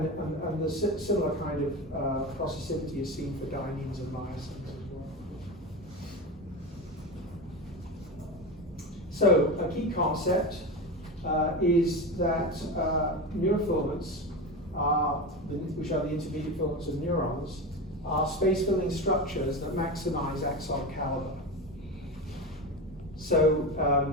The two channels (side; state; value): both; normal; correlation 0.23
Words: the similar kind of processivity is seen for dyneins and myosins as well. So a key concept is that neurofilaments, which are the intermediate filaments of neurons, are space-filling structures that maximize axon caliber. So